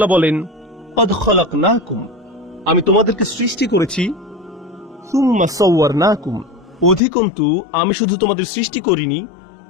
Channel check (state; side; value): drops out; right; at 7.0 s